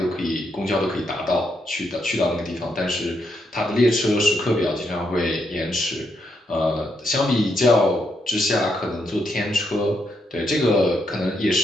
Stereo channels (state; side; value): normal; both; correlation 0.79